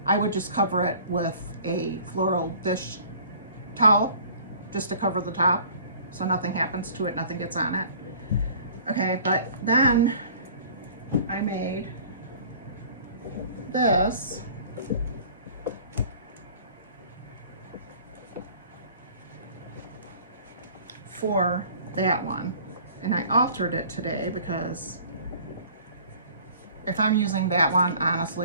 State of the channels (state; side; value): inverted; both; correlation -0.49